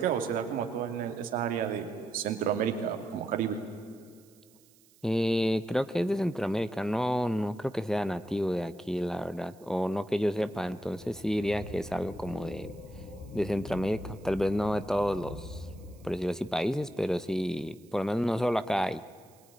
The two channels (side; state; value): right; noise; hiss, 29 dB below the sound